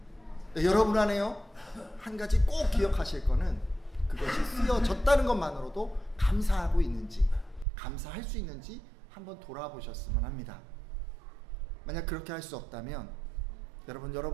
여러분 안에요, 한 가지 꼭 기억하실 거는 그것이 쓰여졌다는 것만으로도 감사하고 있는지, 감사할 수 있는지 한번 돌아보셨으면 합니다. 만약 그렇게 할 수 없다면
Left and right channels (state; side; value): drops out; left; at 7.7 s